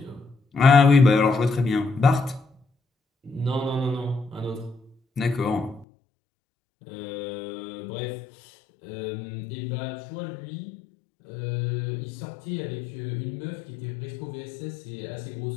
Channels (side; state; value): right; drops out; at 5.9 s